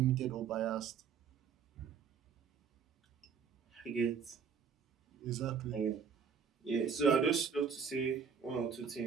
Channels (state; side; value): quieter; left; 6.7 dB